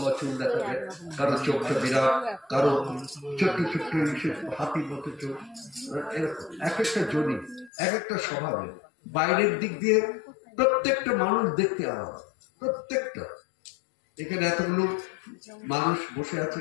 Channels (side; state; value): right; drops out; at 7.7 s